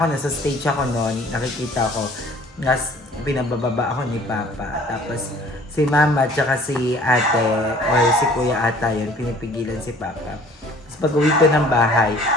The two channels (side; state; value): both; normal; correlation 0.52